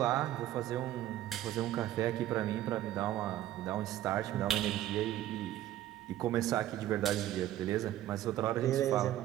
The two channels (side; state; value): left; quieter; 13.2 dB